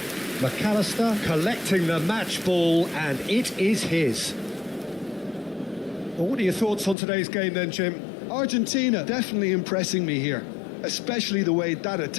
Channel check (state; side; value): drops out; right; at 7.0 s